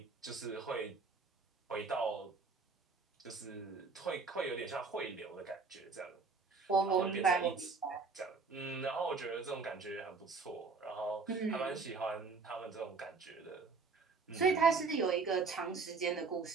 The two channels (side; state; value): left; quieter; 4.5 dB